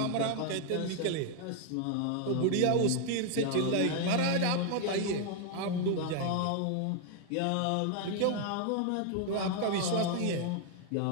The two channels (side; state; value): both; different; correlation 0.00